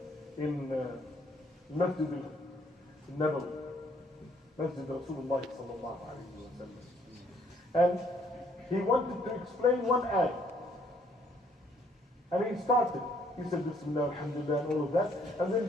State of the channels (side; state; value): both; normal; correlation 0.66